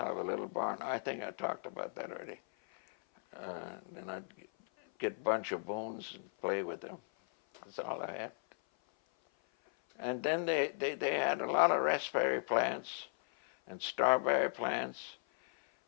a little barn. I think I talked about that already. Then I'd get a bunch of bones and play with them. That's all I had. And then they had a lot of raspberry plants and strawberry plants,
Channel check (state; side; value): silent; right; 53 dB below the other